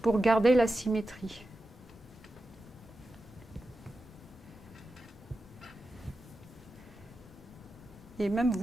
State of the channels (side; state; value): both; normal; correlation 0.91